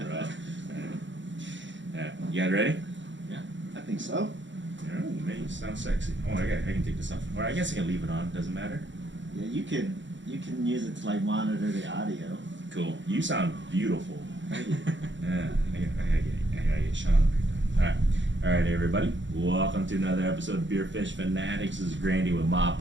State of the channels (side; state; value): left; late; 0.54 ms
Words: Yeah. You guys ready? Yeah. I think so. Yeah, man, you sound sexy. Oh, I can take this off. Or I guess I can leave it on. Doesn't matter. Yeah, you can use it to like monitor the audio. Cool. You sound beautiful. Thank you. Yeah, I gotta get Sean. All right, everybody. Welcome to another episode of Beer Fish Fanatics. This is Grandy with Ma